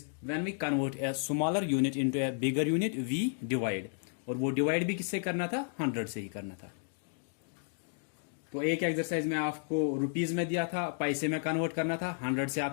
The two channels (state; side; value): silent; right; digital silence